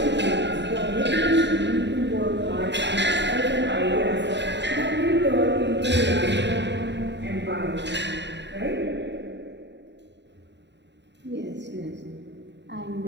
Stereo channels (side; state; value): left; late; 0.51 ms